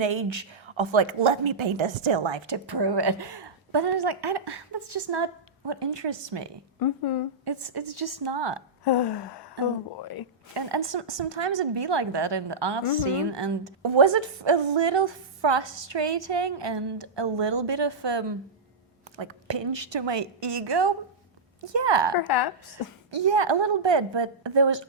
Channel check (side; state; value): left; quieter; 3.2 dB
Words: of like, let me paint a still life to prove it. But I was like, that's just not what interests me. It's just not. Oh boy. And sometimes it'd be like that in the art scene. And was it a little frustrating and a little bit of like pinch to my ego? Yeah. Perhaps. Yeah, a little bit. But there was